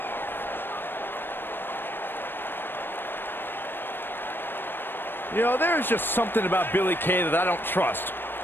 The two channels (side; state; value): right; late; 0.097 ms